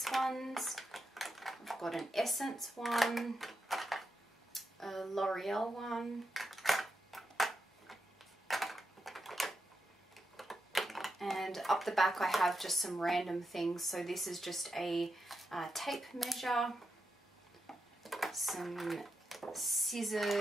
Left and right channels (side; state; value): both; normal; correlation 0.86